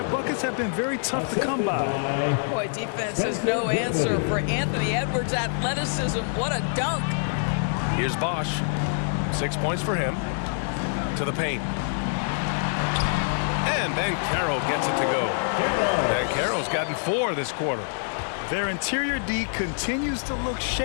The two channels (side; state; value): right; silent; digital silence